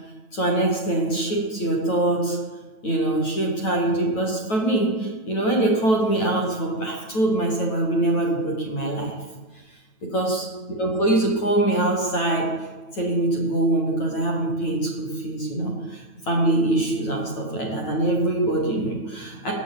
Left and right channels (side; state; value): right; late; 9.2 ms